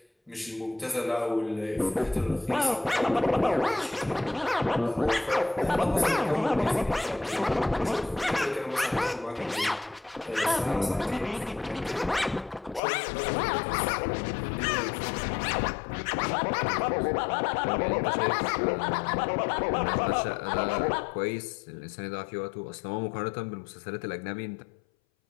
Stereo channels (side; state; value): right; drops out; at 12.8 s